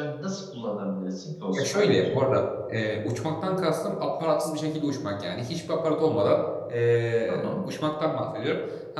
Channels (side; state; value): both; identical; correlation 1.00